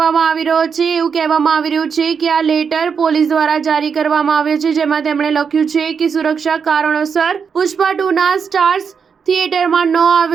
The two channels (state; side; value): quieter; left; 6.3 dB